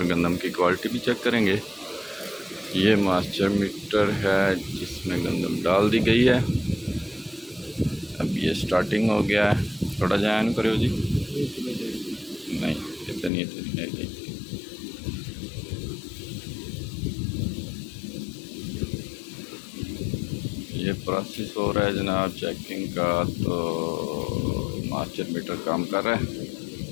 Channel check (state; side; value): drops out; right; at 13.3 s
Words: गंदम की क्वालिटी भी चेक करेंगे। ये मास्टर मीटर है जिसमें गंदम डाल दी गई है। अब ये स्टार्टिंग हो गया है। थोड़ा जान करो जी, नहीं इतनी नहीं। ये प्रोसेस हो रहा है जनाब चेकिंग का। तो मास्टर मीटर काम कर रहा है।